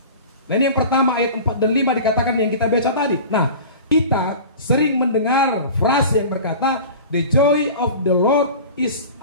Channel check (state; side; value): inverted; both; correlation -0.37